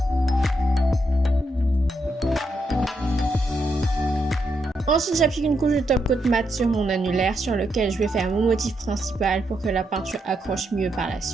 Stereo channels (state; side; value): normal; both; correlation 0.81